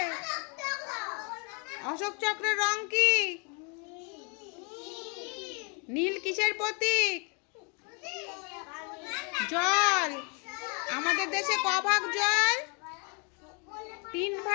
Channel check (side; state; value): right; quieter; 35.4 dB